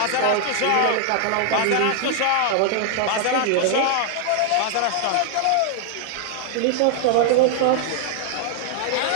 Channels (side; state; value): both; different; correlation 0.00